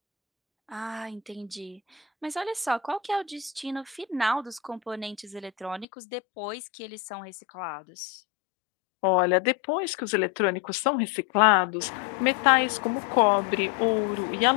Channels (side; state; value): right; drops out; at 5.9 s